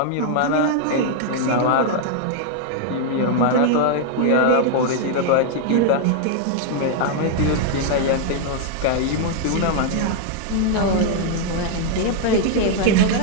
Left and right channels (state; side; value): different; both; correlation 0.00